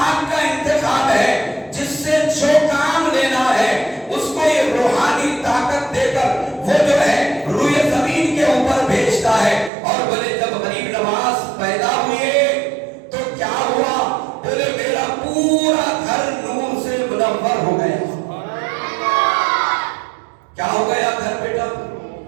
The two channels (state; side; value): drops out; left; at 9.7 s